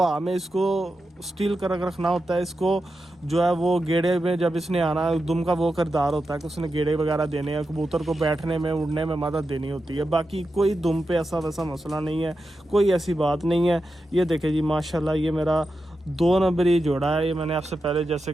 में इसको स्टील कर रखना होता है। इसको जो है वो गेड़े में जब इसने आना, दुम का वो करदार होता है कि उसने गेड़े वगैरह देने हैं, कबूतर को बैठने में, उड़ने में मदद देनी होती है। बाकी कोई दुम पे ऐसा वैसा मसला नहीं है, कोई ऐसी बात नहीं है। ये देखे जी माशाल्लाह, ये मेरा 2 नंबरी जोड़ा है। ये मैंने आपसे पहले जैसे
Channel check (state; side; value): normal; both; correlation 0.89